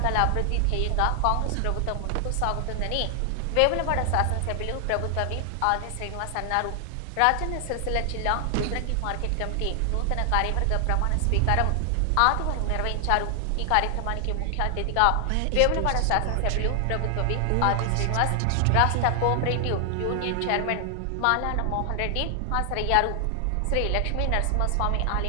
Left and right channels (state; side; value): different; both; correlation 0.00